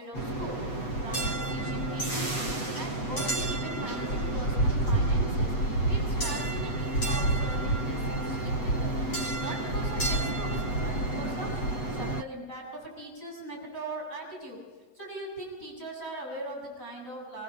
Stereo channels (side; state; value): right; late; 8.0 ms